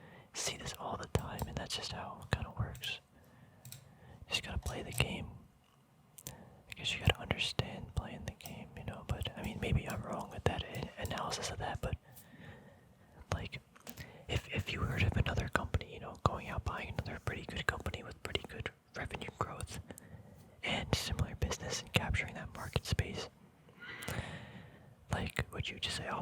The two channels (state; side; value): identical; both; correlation 1.00